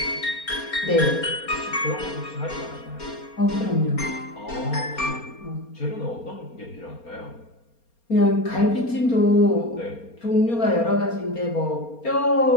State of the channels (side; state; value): right; late; 4.3 ms